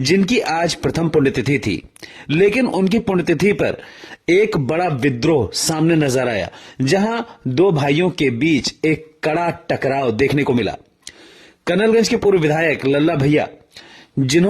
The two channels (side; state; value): both; identical; correlation 1.00